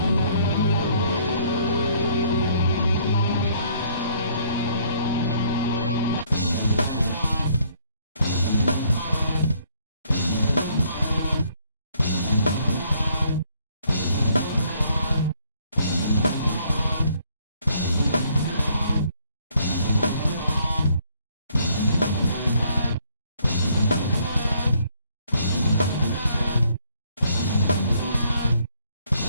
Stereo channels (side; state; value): both; inverted; correlation -0.66